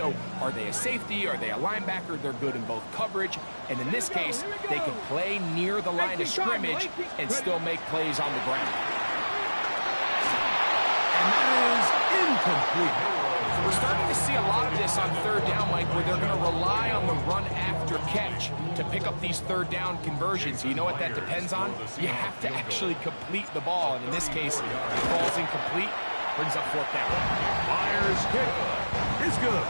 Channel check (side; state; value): both; inverted; correlation -1.00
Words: are they a safety? Are they a linebacker? They're good in both coverage. And in this case, they can play near the line of scrimmage and still make plays on the ground. And that is incomplete. We're starting to see a lot of this on 3rd down, Mike, where they're going to rely on the run after catch to pick up these 3rd down conversions. You know what that depends on? You have to actually complete the ball. And in this case, it falls incomplete, brings up 4th down. Myers' kick is good.